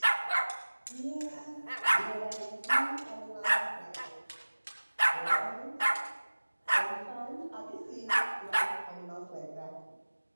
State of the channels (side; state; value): both; inverted; correlation -1.00